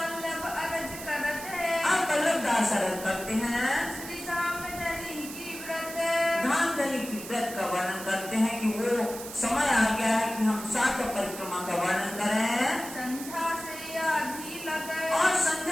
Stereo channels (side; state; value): right; noise; hiss, 11 dB below the sound